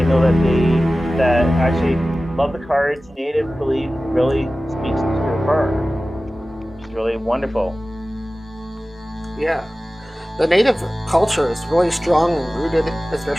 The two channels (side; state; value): both; normal; correlation 0.96